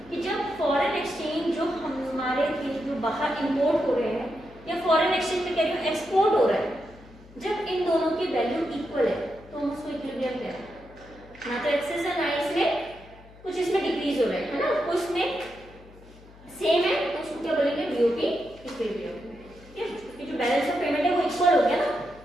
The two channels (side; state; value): left; noise; hum, 22 dB below the sound